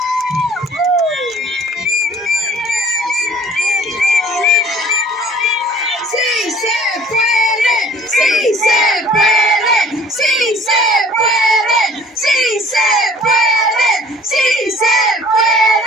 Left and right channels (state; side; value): normal; both; correlation 0.51